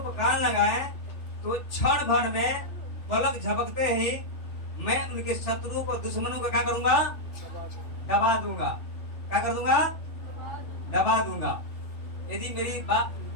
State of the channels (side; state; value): right; late; 3.4 ms